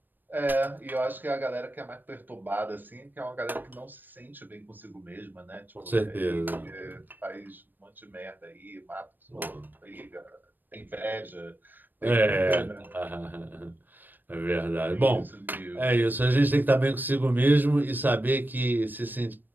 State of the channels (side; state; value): left; late; 0.091 ms